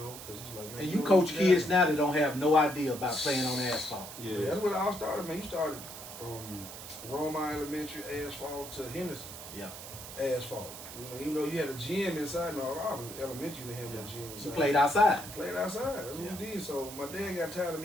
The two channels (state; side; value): noise; right; hiss, 12 dB below the sound